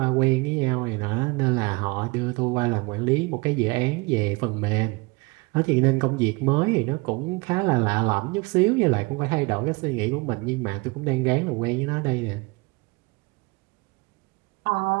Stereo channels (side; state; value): left; quieter; 26.3 dB